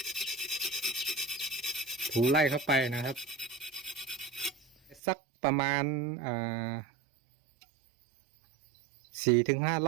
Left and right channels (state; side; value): drops out; left; at 5.0 s